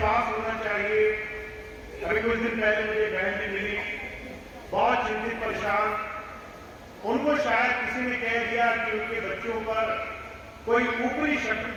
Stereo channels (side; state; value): both; identical; correlation 1.00